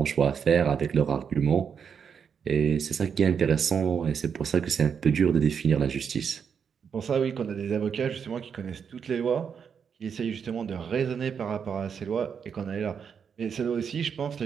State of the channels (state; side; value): quieter; left; 6.9 dB